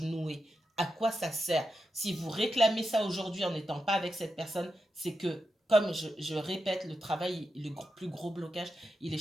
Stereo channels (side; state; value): both; normal; correlation 0.88